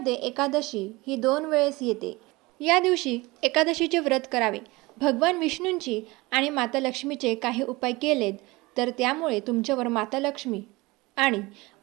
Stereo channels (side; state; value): left; quieter; 22.3 dB